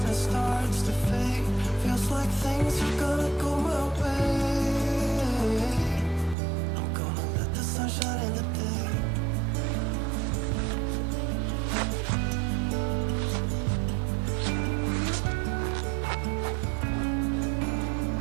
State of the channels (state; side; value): drops out; left; at 6.4 s